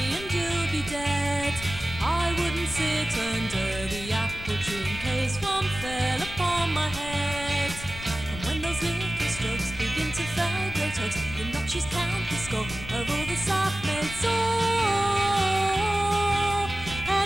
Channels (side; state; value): left; noise; rumble, 12 dB below the sound